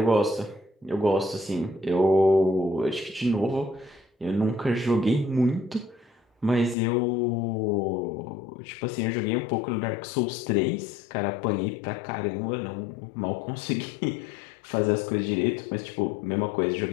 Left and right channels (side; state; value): right; drops out; at 6.8 s